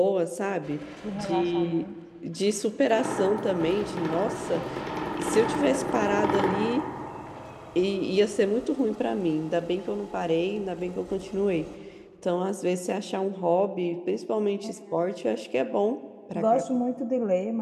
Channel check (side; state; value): both; identical; correlation 1.00